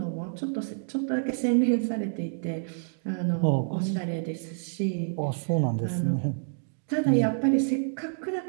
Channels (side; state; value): left; silent; digital silence